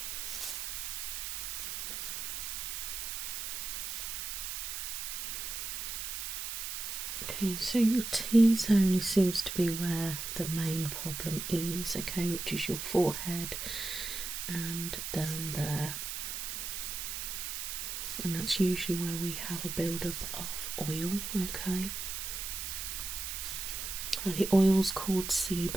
Okay, so your T-zone only seems to be where the main problem is, okay, which is your forehead and down there. And that's usually where we have a build-up of oil, okay. The oil's called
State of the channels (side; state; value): right; noise; hiss, 4 dB below the sound